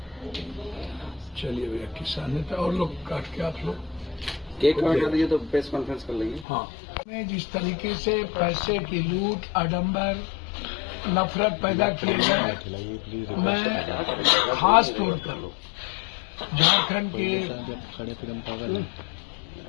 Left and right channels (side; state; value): right; drops out; at 6.5 s